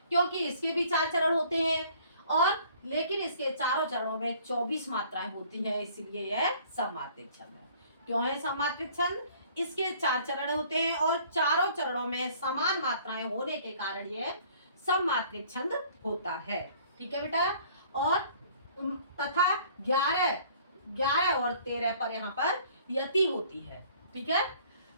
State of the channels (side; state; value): both; inverted; correlation -0.55